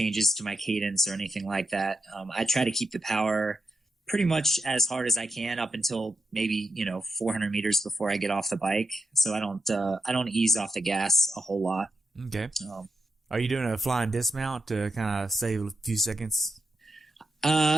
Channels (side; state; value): both; normal; correlation 0.85